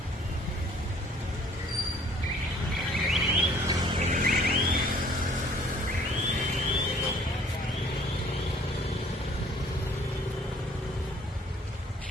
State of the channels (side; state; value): both; normal; correlation 0.57